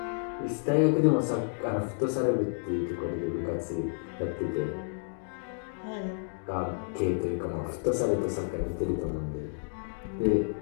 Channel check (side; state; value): right; silent; digital silence